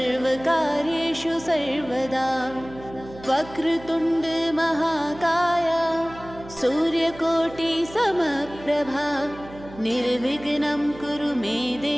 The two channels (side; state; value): right; noise; hum, 17 dB below the sound